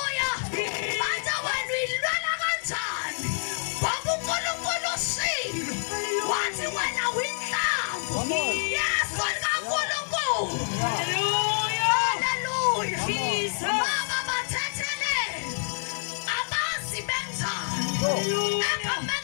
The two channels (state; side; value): silent; right; digital silence